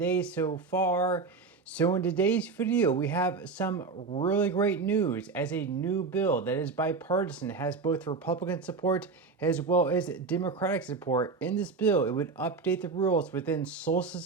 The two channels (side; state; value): left; quieter; 4.5 dB